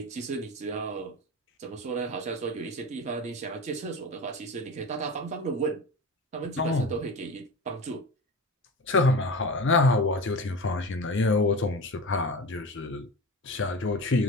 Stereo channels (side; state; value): both; normal; correlation 0.30